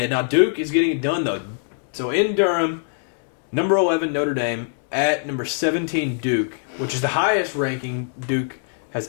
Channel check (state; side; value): silent; right; digital silence